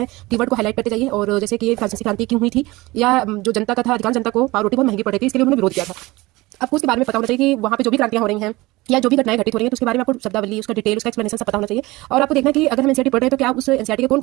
कीवर्ड को हाईलाइट करते जाइए। और जैसे कि ये फ्रांसीसी क्रांति क्यों हुई थी, या जो जनता का था, अधिकांश जनता को पावरोटी बहुत महंगी पड़ रही थी, इसके लिए उन्होंने विरोध किया था। आपको उसके बारे में पता होना चाहिए कि वहाँ पे जो भी क्रांतियां हो रही हैं या जो भी घटनाएं घटित हो रही हैं, तो उसके बारे में आपको शब्दावली, उसका डिटेल, उसका एक्सप्लेनेशन सब पता होना चाहिए। और आपको देखना कि अगर हम एनसीईआरटी पढ़ रहे हैं तो क्या उस एनसीईआरटी के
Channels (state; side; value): quieter; left; 20.8 dB